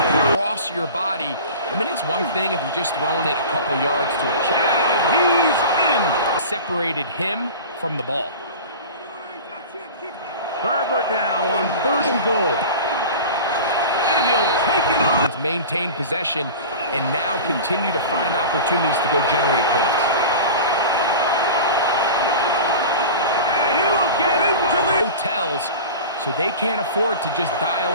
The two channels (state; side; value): inverted; both; correlation -0.34